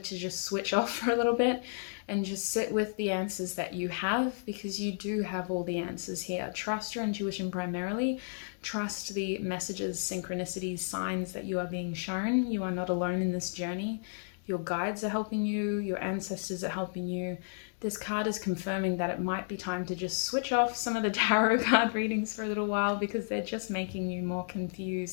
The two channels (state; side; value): silent; right; digital silence